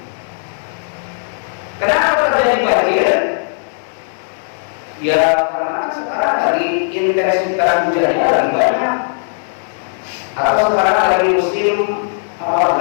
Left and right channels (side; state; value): right; silent; digital silence